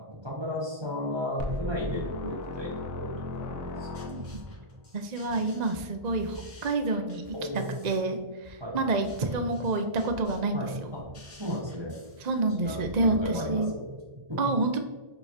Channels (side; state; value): left; late; 1.9 ms